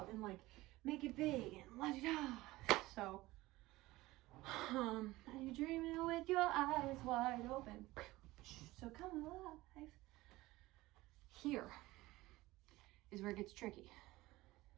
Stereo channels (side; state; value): left; quieter; 18.8 dB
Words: and like make it big and let it out. So and you're dreaming with your eyes wide open. So come alive. Here is where it gets tricky.